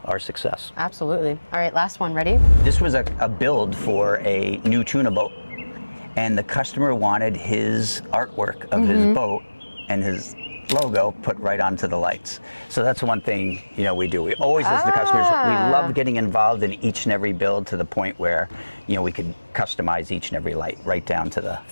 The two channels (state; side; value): inverted; both; correlation -1.00